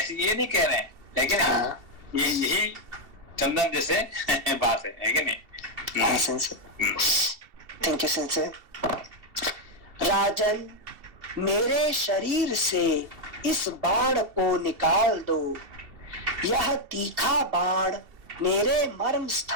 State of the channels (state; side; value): late; left; 2.7 ms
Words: ये नहीं कह रहे हैं, लेकिन ये यही चंदन जैसे बात है कि नहीं। Thank you sense. राजन, मेरे शरीर से इस बाण को निकाल दो। यह तीखा बाण मेरे मर्म